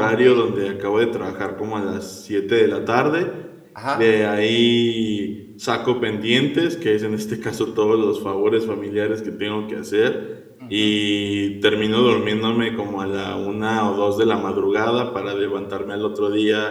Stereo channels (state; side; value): identical; both; correlation 1.00